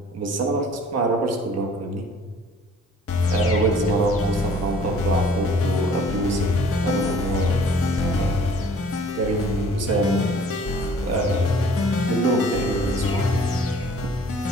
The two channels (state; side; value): normal; both; correlation 0.53